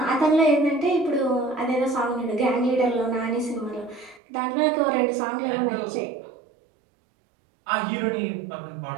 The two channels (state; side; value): drops out; left; at 4.2 s